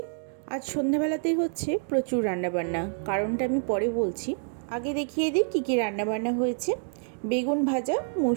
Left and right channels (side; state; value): left; silent; 60 dB below the other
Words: আজ সন্ধ্যাবেলাতেই হচ্ছে প্রচুর রান্নাবান্না, কারণটা আমি পরে বলছি। আগে দেখিয়ে দিই কী কী রান্নাবান্না হয়েছে। বেগুন ভাজা,